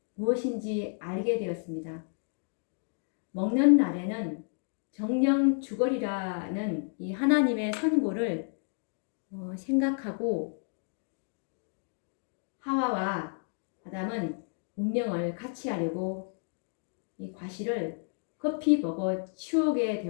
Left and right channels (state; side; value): silent; right; 56 dB below the other